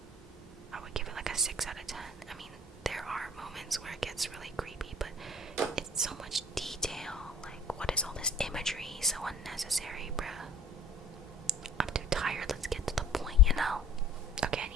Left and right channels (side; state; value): both; normal; correlation 0.46